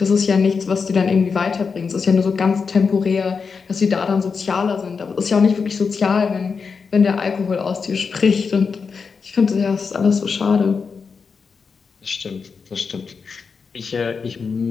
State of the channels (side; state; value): right; quieter; 5.3 dB